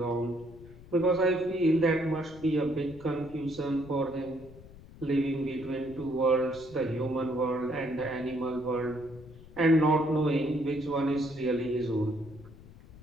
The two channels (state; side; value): noise; left; rumble, 19 dB below the sound